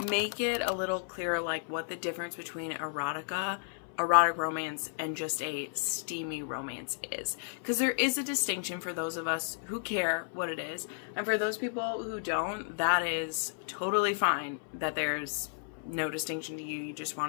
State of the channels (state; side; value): silent; right; 56 dB below the other